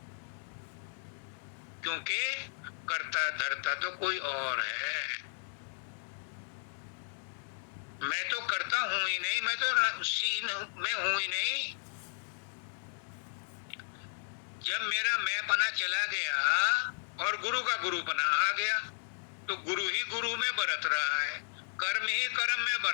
क्योंकि कर्ता धर्ता तो कोई और है। मैं तो करता हूं ही नहीं, मैं तो सीन में हूं ही नहीं। जब मेरा मैं पना चला गया और गुरु का गुरु पना आ गया, तो गुरु ही गुरु में बरत रहा है, कर्म ही कर्म में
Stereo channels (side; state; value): right; silent; 55 dB below the other